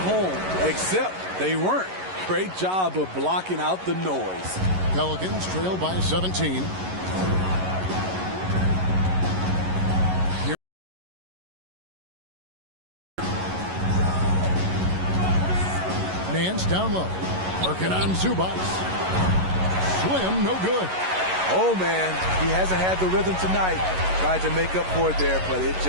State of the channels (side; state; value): left; late; 11 ms